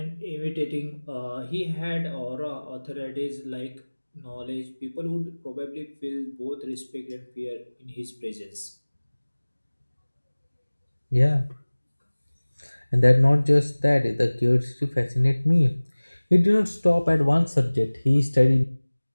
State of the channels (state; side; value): inverted; both; correlation -1.00